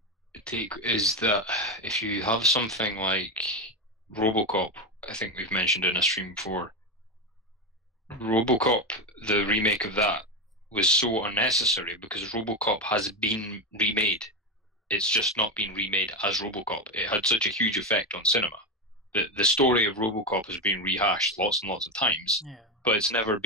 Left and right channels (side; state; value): both; normal; correlation 0.14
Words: take is that if you have something like RoboCop, I think we've mentioned in a stream before. RoboCop, the remake of that, was so unnecessary because RoboCop has been remade. It's just not been remade as RoboCop. It had such a huge effect on cinema. The story of RoboCop has been rehashed lots and lots of times, but it's never